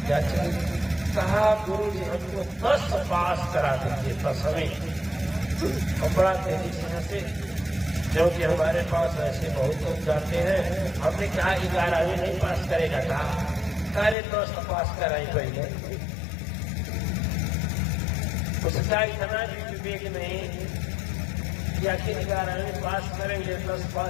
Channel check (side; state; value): right; drops out; at 14.2 s